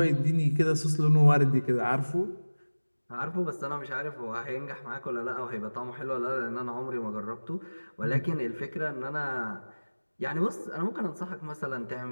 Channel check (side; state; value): both; inverted; correlation -1.00